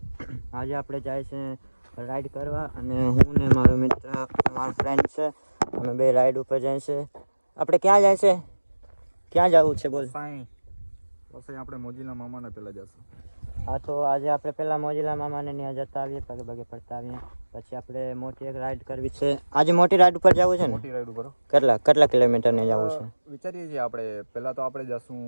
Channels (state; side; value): inverted; both; correlation -1.00